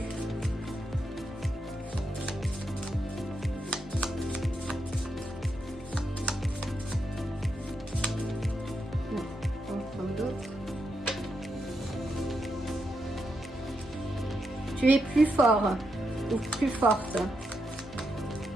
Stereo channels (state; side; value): normal; both; correlation 0.83